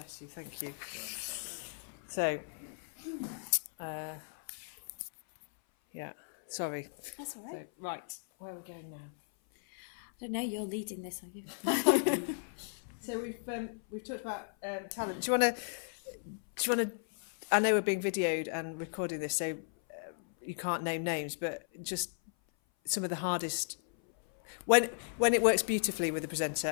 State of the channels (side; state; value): right; silent; 54 dB below the other